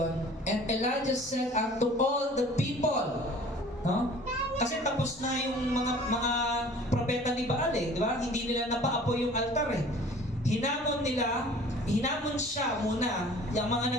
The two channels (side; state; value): both; normal; correlation 0.48